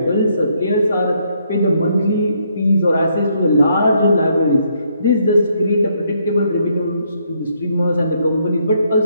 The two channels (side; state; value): both; inverted; correlation -0.72